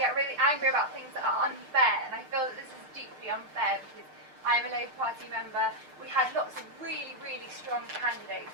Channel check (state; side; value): late; left; 6.6 ms